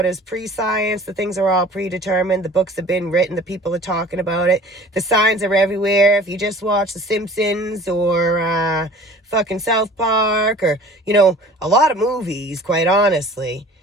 is pre-science. The things are all predetermined. The books have been written. The people are talking about it. The signs are everywhere. If you just watch The Simpsons or fucking South Park or, a lot of movies, quite honestly.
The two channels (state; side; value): normal; both; correlation 0.46